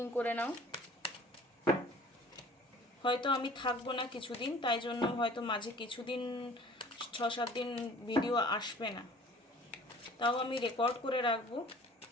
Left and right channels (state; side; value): normal; both; correlation 0.49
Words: করে নাও। হয়তো আমি থাকবো না কিছুদিন, তাই জন্য হয়তো মাঝে কিছুদিন 6-7 দিন ভিডিও আসবে না, তাও আমি রেকর্ড করে রাখবো,